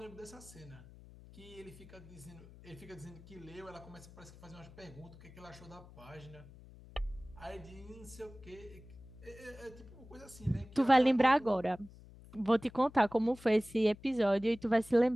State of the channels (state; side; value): noise; left; hum, 20 dB below the sound